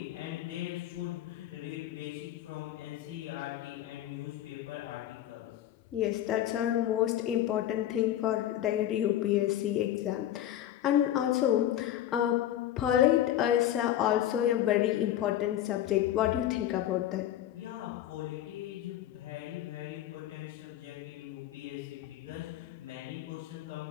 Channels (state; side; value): quieter; right; 12.2 dB